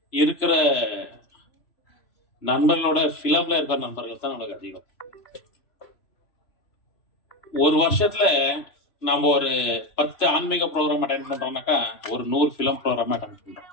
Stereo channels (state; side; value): late; right; 3.0 ms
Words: இருக்கிற நண்பர்களோட பிலிம்ல இருக்கிற நண்பர்கள் தான் நம்மளுக்கு அதிகம். ஒரு வருஷத்துல நம்ம ஒரு 10 ஆன்மீக ப்ரோக்ராம் அட்டெண்ட் பண்றோம்னாக்கா ஒரு 100 பிலிம் ப்ரோக்ராம் அட்டெண்ட் பண்றோம்.